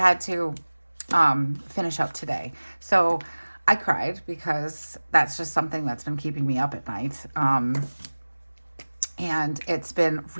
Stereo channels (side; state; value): both; inverted; correlation -1.00